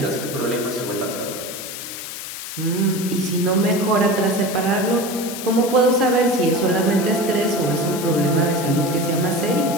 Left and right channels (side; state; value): left; noise; hiss, 9 dB below the sound